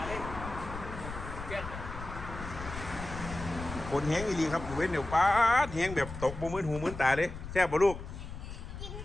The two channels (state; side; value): noise; left; rumble, 10 dB below the sound